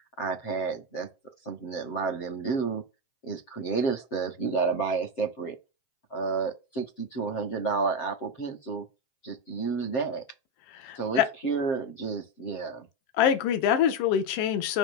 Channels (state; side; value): late; right; 7.6 ms